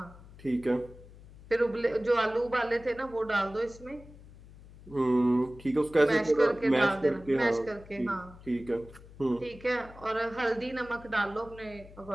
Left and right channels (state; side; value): noise; left; hum, 20 dB below the sound